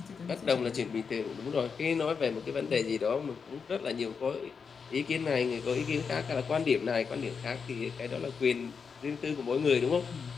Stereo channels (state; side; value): quieter; right; 5.8 dB